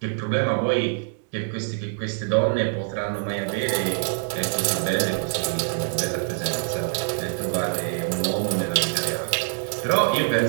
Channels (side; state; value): left; silent; 60 dB below the other